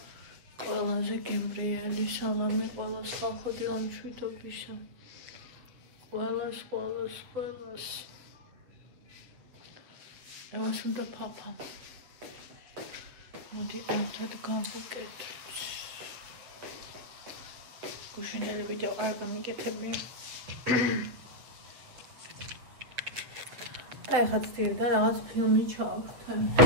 ყველაზე გემრიელი სალამი ყველას ხალხო დილამშვიდობისა. ყველას. ევას უნდა ფაფა. მოდი ერთად გავუკეთოთ. გუშინდელი ვიდეო არ გამიგეთებია. და ეხლა ცდილდა რაღაც ფილმი ჩავხტე.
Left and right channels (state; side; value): late; left; 7.7 ms